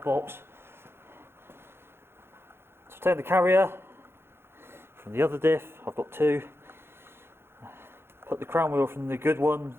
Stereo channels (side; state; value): left; late; 0.11 ms